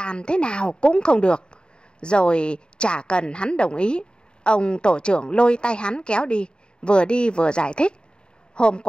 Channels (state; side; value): late; right; 0.050 ms